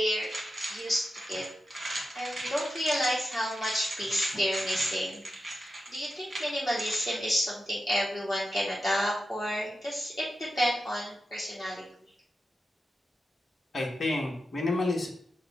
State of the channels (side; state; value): both; normal; correlation 0.90